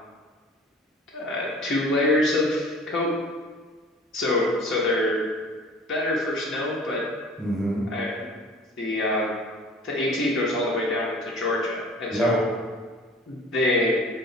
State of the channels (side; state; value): both; normal; correlation 0.46